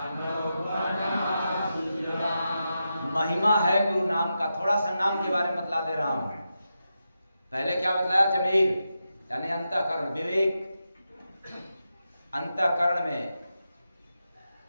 बना सुजान। महिमा है गुरु नाम का। थोड़ा सा नाम के बारे में बतला दे रहा हूं। पहले क्या बतलाया? जमीर यानी अंतःकरण, विवेक। अंतःकरण में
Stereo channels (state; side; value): inverted; both; correlation -0.89